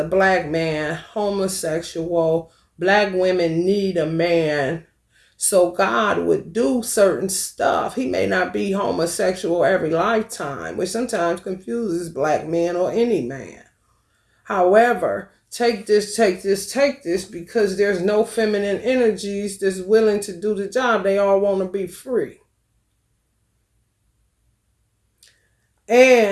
black man, homosexual, black women need a man. So God would do certain stuff. He may not be homosexual every lifetime, which sometimes confuses black men or any man. However, take this, because there's no feminine energies that's willing to do the job. They all want to be free.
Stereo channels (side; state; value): both; identical; correlation 1.00